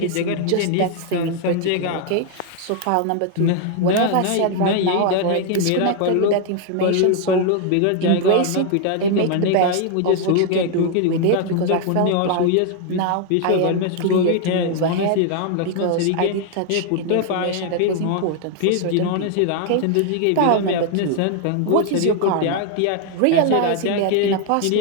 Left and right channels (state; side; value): different; both; correlation 0.00